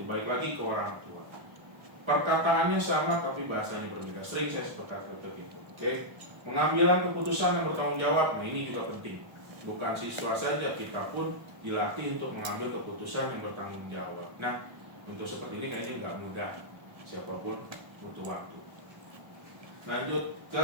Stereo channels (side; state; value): left; late; 1.3 ms